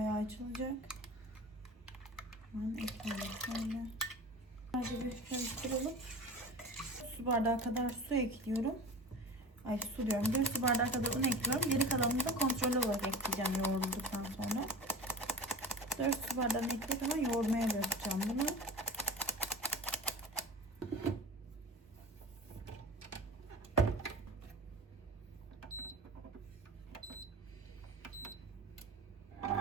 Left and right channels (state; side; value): normal; both; correlation 0.34